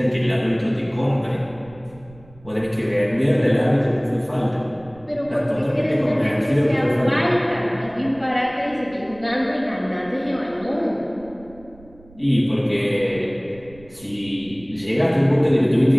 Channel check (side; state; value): right; noise; rumble, 24 dB below the sound